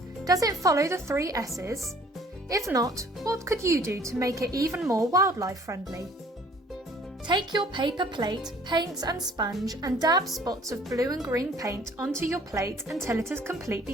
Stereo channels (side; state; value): both; normal; correlation 0.55